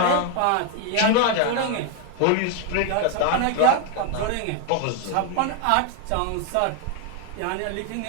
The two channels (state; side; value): different; both; correlation 0.00